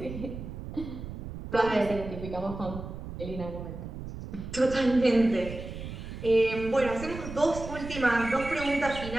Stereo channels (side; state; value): right; noise; rumble, 9 dB below the sound